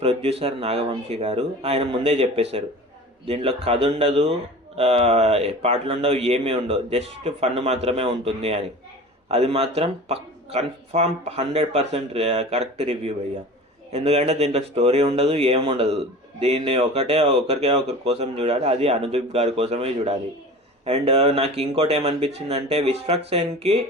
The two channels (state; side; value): normal; both; correlation 0.37